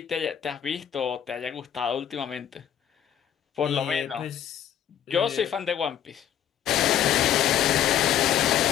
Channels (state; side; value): quieter; right; 10.1 dB